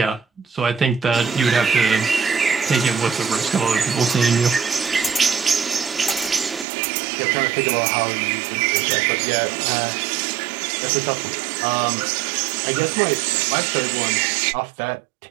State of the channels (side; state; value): left; drops out; at 6.7 s